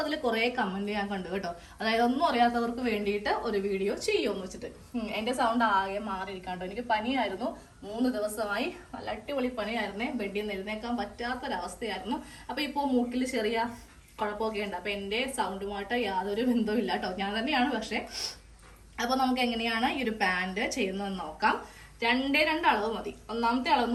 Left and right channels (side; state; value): both; identical; correlation 1.00